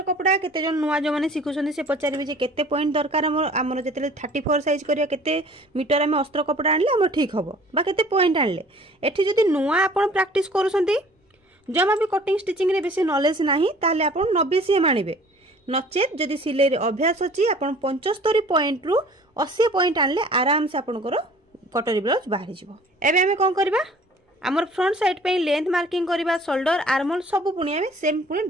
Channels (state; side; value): normal; both; correlation 0.50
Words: कपड़ा केते जन नुआ जो माने सिखुछन से पचारिबे जे केते पॉइंट दरकार हमर जेतेले 34 साइज करिया केते मीटर हम अस्त्र कपड़ा आनले हमर ठीक हबो बा केते पॉइंट आनले। एठी जदी नुआ आपण प्रैक्टिस करूसंती जमा भी कटिंग स्टिचिंग रे बेसी नॉलेज नाही ताले आपण 90 सीएम आनिबे। नचेत जदी सिलाई रे अभ्यास अछि आपण 75 पॉइंट रु 80 पॉइंट आनले आराम से आपनकर कटरी ब्लाउज बाहरी जिवो। एबे हमें कोन करबा आमर फ्रंट साइड पे लेंथ मार्किंग करबा, शोल्डर आर्महोल सब पुणी आमे सेम पुणी